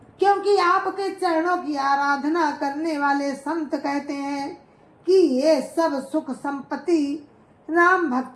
क्योंकि आपके चरणों की आराधना करने वाले संत कहते हैं कि ये सब सुख संपत्ति राम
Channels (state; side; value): identical; both; correlation 1.00